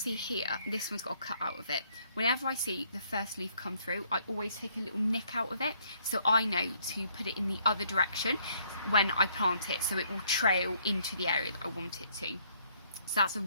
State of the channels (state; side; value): inverted; both; correlation -0.66